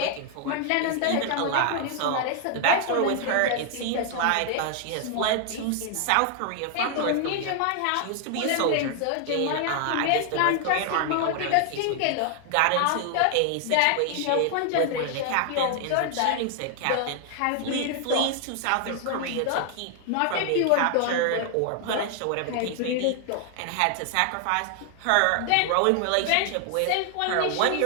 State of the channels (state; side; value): different; both; correlation 0.00